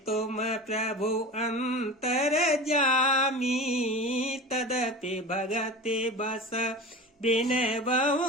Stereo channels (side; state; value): both; normal; correlation 0.32